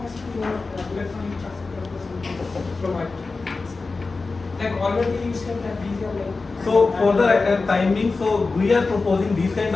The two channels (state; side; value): quieter; right; 3.9 dB